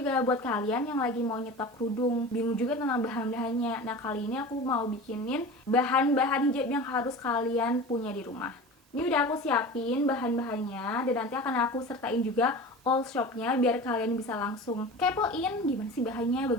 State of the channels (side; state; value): both; normal; correlation 0.34